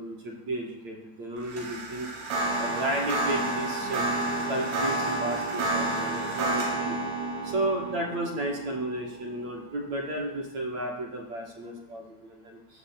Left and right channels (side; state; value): left; late; 8.8 ms